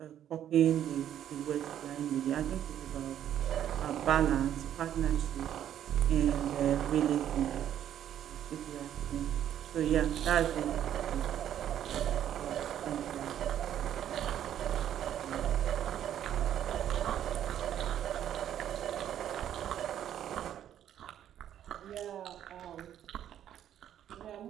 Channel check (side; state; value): left; quieter; 10.6 dB